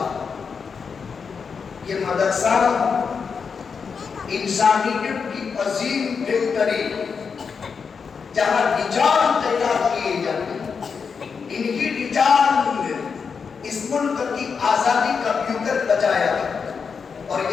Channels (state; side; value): quieter; right; 5.8 dB